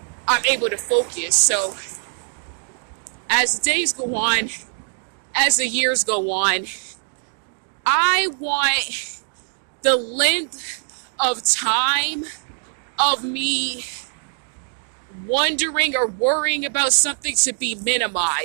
I'm able to focus. So as the days go on, as the years go on, I want the length of time of me wondering or worrying about something to be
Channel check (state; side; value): silent; left; digital silence